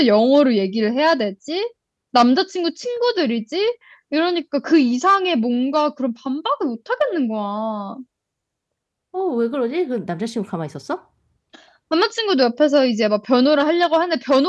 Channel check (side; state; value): both; identical; correlation 1.00